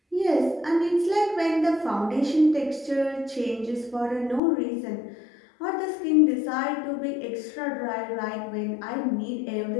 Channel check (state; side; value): drops out; right; at 4.4 s